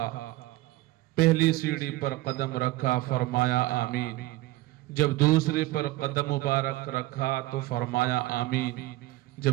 پہلی سیڑھی پر قدم رکھا، فرمایا آمین۔ جب دوسری پر قدم مبارک رکھا تو فرمایا آمین۔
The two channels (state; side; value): quieter; left; 18.1 dB